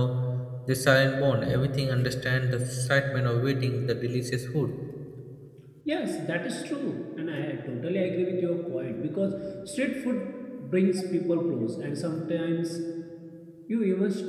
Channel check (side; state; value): both; identical; correlation 1.00